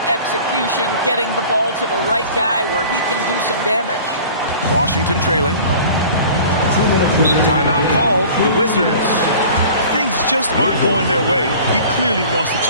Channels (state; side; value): inverted; both; correlation -0.44